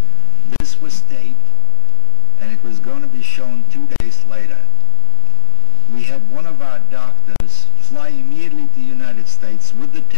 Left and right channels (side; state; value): right; silent; digital silence